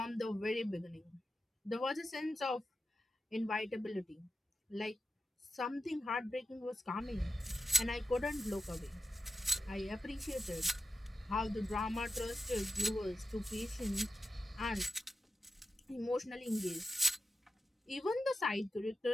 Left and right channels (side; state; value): both; normal; correlation 0.90